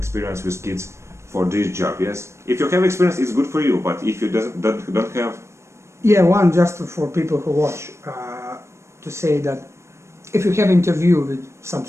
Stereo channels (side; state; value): left; late; 0.13 ms